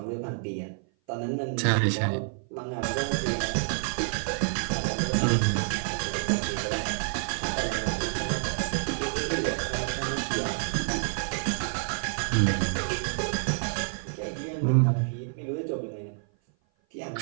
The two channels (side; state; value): left; silent; 56 dB below the other